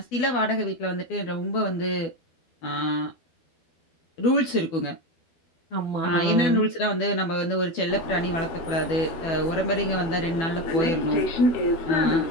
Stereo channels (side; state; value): right; late; 12 ms